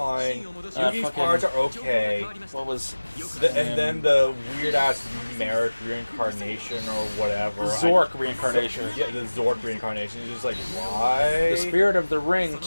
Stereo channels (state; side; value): inverted; both; correlation -1.00